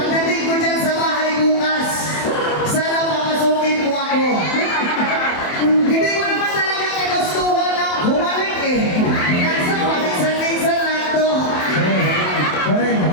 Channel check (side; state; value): right; late; 27 ms